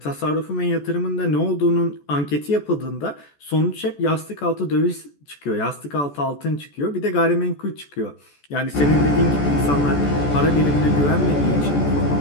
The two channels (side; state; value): right; late; 14 ms